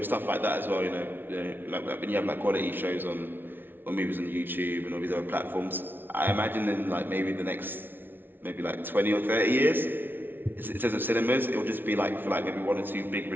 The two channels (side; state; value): left; late; 0.098 ms